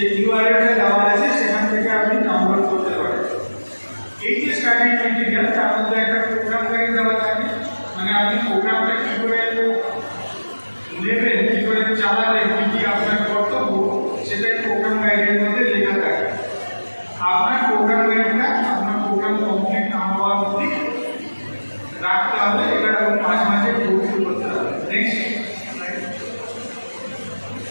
ইউআরএলটা দেওয়া আছে সেখান থেকে প্রোগ্রামটা কী করে নেবেন, কী করে চালাবেন, কী কী আপনার কর্তব্য, সেটাই প্রোগ্রাম গাইডের মধ্যে লেখা থাকে। আপনার প্রোগ্রাম গাইডটা আপনার প্রোগ্রাম কমপ্লিট না হওয়ার অবধি রাখতে হবে, এটা এবং মাঝে মাঝে প্রস্তুত করতে হবে। নেক্সট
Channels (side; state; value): both; inverted; correlation -1.00